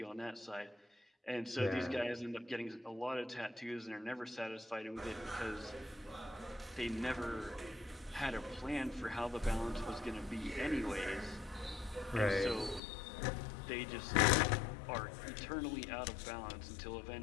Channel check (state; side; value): drops out; right; at 12.8 s